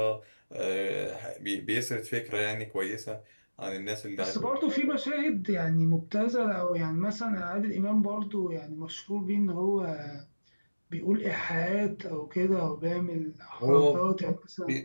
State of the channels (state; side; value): inverted; both; correlation -1.00